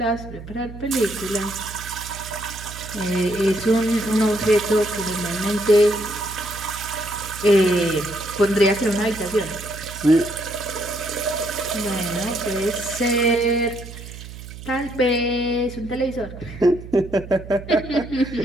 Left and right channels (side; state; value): right; noise; hum, 13 dB below the sound